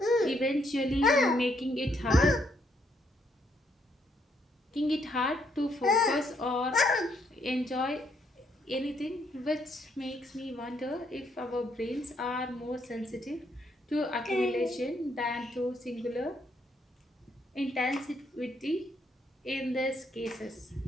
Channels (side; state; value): both; normal; correlation 0.73